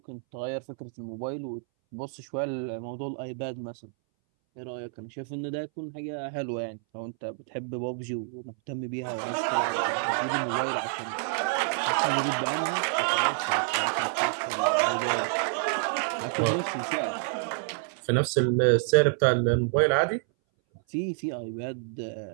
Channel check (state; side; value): silent; left; 59 dB below the other